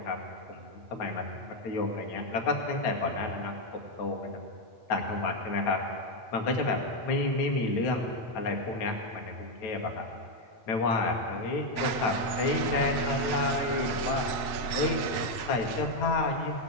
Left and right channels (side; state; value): right; late; 7.9 ms